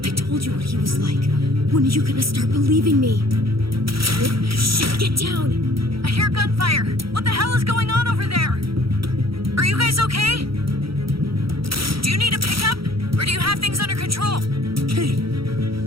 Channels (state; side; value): late; left; 0.75 ms